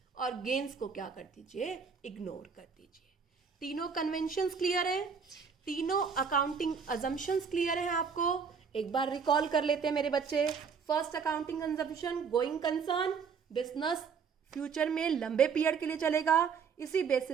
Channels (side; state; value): left; quieter; 6.1 dB